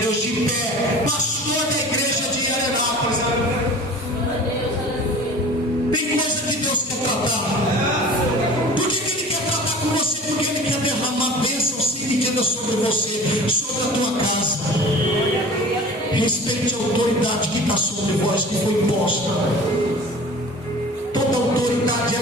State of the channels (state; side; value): normal; both; correlation 0.41